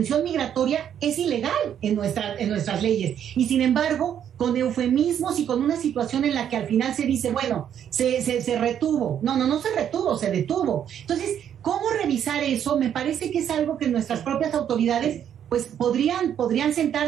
migratoria es ilegal en nuestras leyes, y sin embargo, con eufemismos y con una situación en la que al final se dice, bueno, se retuvo. No se retuvo, se detuvo. Entonces, ¿cómo revisar eso? Me parece que es algo que nuestras propias autoridades pues podrían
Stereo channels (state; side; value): quieter; left; 9.4 dB